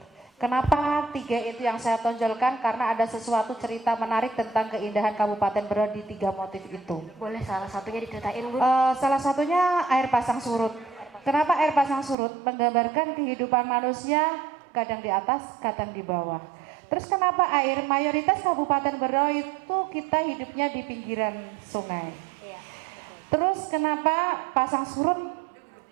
Kenapa 3 itu yang saya tonjolkan? Karena ada sesuatu cerita menarik tentang keindahan Kabupaten Berau di 3 motif itu. Boleh salah satunya diceritain Bun? Salah satunya air pasang surut. Kenapa air pasang surut? Menggambarkan kehidupan manusia kadang di atas, kadang di bawah. Terus kenapa air? Mayoritas Kabupaten Berau itu kita hidupnya di pinggiran sungai. Iya. Terus kenapa pasang surut?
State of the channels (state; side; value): drops out; left; at 12.2 s